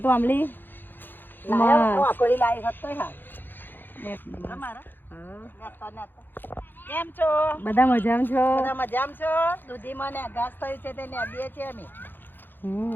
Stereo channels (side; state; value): right; late; 0.094 ms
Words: આંબલી? કેમ છો? બધા મજામાં છો? બધા મજામાં છો? દૂધીમાં ને ઘાસ થયું છે તે નેદીએ છીએ અમે.